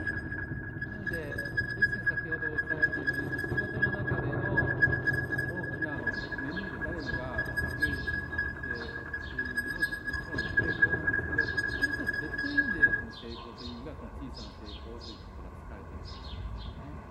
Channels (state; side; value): identical; both; correlation 1.00